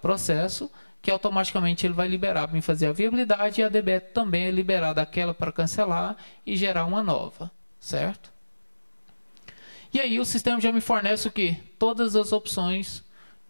que automaticamente ele vai liberar para mim fazer a viabilidade e a DBE também é liberada aquela para cancelar e gerar uma nova, certo? E aí o sistema já me fornece o quê? Todas as opções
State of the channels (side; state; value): both; inverted; correlation -1.00